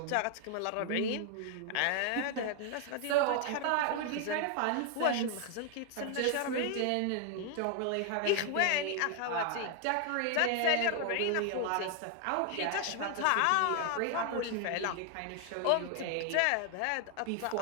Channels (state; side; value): different; both; correlation 0.00